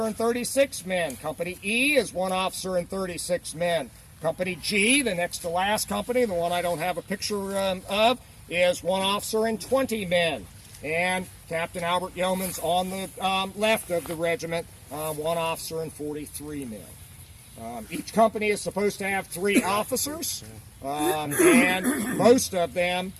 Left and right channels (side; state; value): both; identical; correlation 1.00